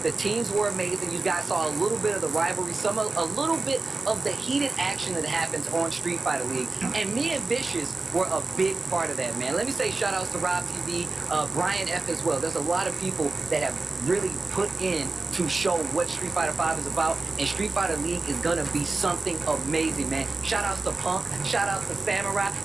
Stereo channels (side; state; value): left; quieter; 3.5 dB